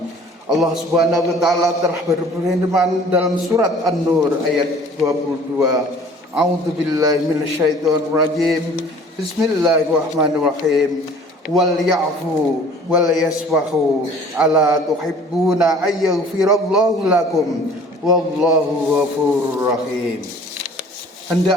Allah Subhanahu wa taala telah berfirman dalam surat An-Nur ayat 22. A'udzubillahi minasyaitonir rajim. Bismillahirrahmanirrahim. Wal ya'fu wal yasfahu ala tuhibbuna ayyaghfirallahu lakum wallahu ghafurur rahim.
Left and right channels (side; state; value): both; normal; correlation 0.50